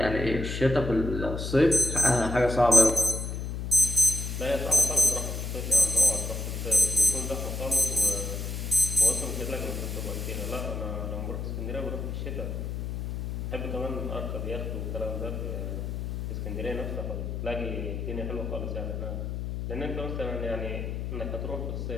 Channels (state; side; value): noise; left; hum, 4 dB below the sound